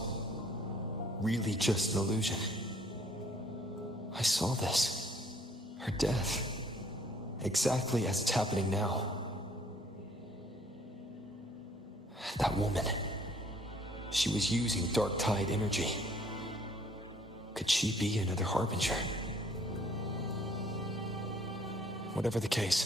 really just an illusion? I saw this. Her death. Exactly as it's happening now. That woman. She was using dark tide energy. Could she be another harbinger? Whatever the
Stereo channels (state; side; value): normal; both; correlation 0.60